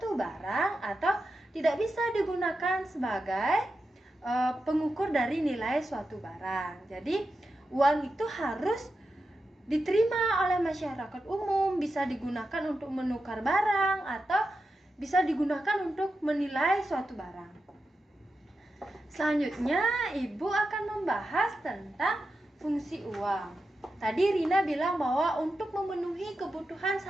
barang atau tidak bisa digunakan sebagai pengukur dari nilai suatu barang. Jadi uang itu harus diterima oleh masyarakat umum, bisa digunakan untuk menukar barang atau bisa digunakan untuk menilai suatu barang. Selanjutnya, Ibu akan membahas tentang fungsi uang. Tadi Rina bilang bahwa untuk memenuhi kebutuhan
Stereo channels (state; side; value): normal; both; correlation 0.90